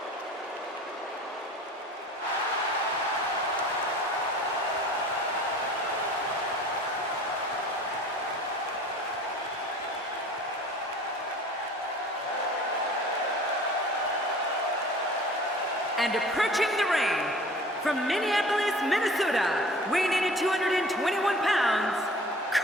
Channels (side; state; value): both; normal; correlation 0.45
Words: And approaching the ring, from Minneapolis, Minnesota, weighing in at 221 pounds,